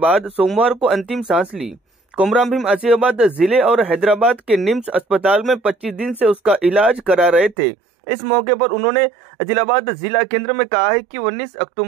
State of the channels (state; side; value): drops out; left; at 7.6 s